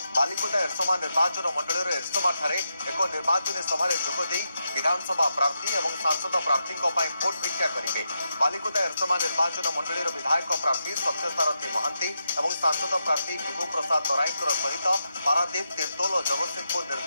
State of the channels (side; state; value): both; inverted; correlation -0.85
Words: बालिकुदा एरसमा निर्वाचन मंडल एरसमा एक निर्वाचन सभा जोगदे विधानसभा प्रार्थी और सांसद प्रार्थी भोट भिक्षा करेंगे। बालिकुदा एरसमा निर्वाचन मंडल विधायक प्रार्थी सत्यसारथी महांती और सांसद प्रार्थी विभु प्रसाद तराई सहित पारादीप तिर्तोल और जगतसिंहपुर